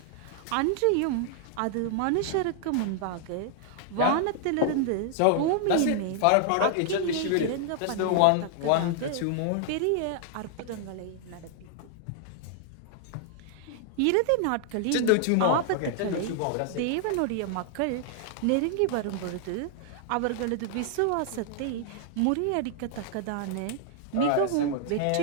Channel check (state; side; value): different; both; correlation 0.00